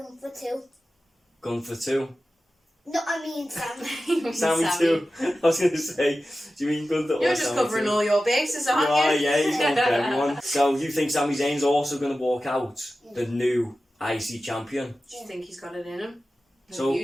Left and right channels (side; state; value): both; normal; correlation 0.94